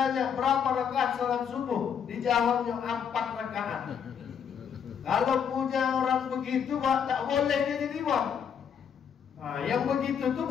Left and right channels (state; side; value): quieter; right; 7.6 dB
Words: berapa rakaat salat subuh, dijawabnya 4 rakaat. Kalau punya orang begitu, Pak, tak boleh dia jadi imam. Nah, yang begitu tuh